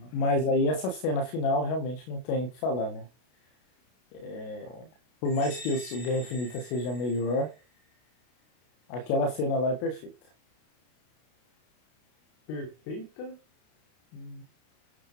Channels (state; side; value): late; right; 32 ms